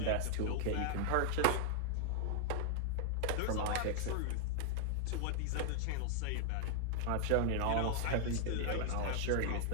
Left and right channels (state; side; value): different; both; correlation 0.00